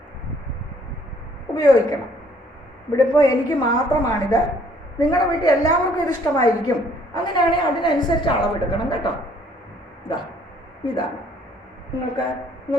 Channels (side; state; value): both; normal; correlation 0.62